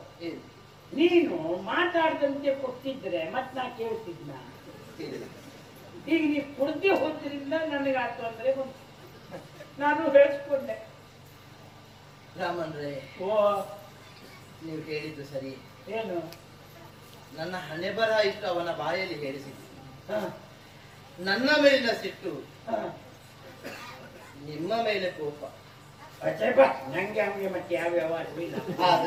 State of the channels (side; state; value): both; identical; correlation 1.00